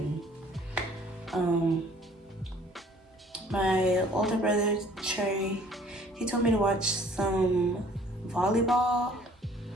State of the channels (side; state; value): both; normal; correlation 0.56